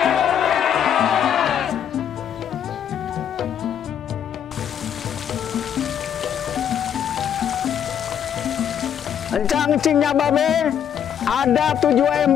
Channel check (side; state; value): right; quieter; 9.0 dB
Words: Encang Cinya Babe, ada 7